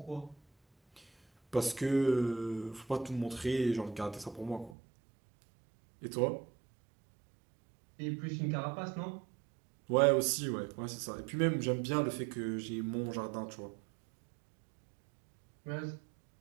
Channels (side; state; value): left; drops out; at 4.8 s